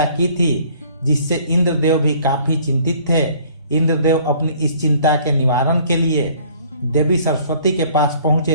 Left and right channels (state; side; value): inverted; both; correlation -0.56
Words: की थी, जिससे इंद्रदेव भी काफी चिंतित थे। इंद्रदेव अपनी इस चिंता के निवारण के लिए देवी सरस्वती के पास